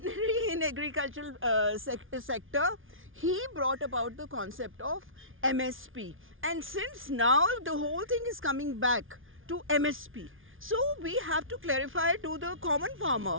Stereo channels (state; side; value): late; left; 0.58 ms